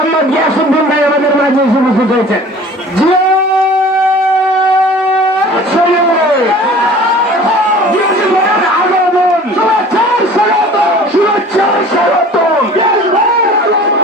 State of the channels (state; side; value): normal; both; correlation 0.45